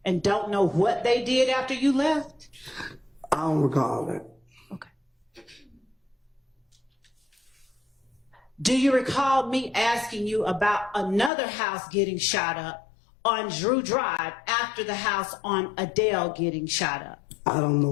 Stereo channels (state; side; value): drops out; right; at 11.3 s